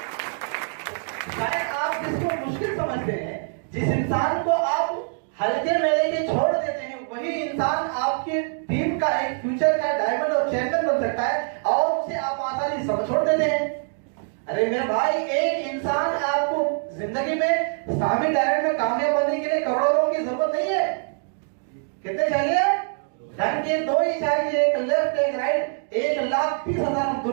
शायद आप जिसको मुश्किल समझते हैं, जिस इंसान को आप हल्के में लेके छोड़ देते हैं, वही इंसान आपके टीम का एक फ्यूचर का डायमंड और चैंपियन बन सकता है, और उसे आप आसानी से छोड़ देते हैं। अरे मेरे भाई, एक इंसान आपको जिंदगी में सामी डायरेक्ट में कामयाब बनने के लिए करोड़ों की जरूरत नहीं है। कितने चाहिए? धन के 2 ही चाहिए, एक लेफ्ट एक राइट। 1,30,000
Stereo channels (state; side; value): silent; left; 62 dB below the other